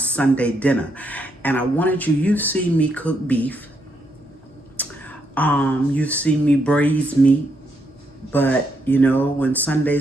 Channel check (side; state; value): both; normal; correlation 0.77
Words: dinner. And I wanted you've seen me cook beef. You've seen me braise meat. But, when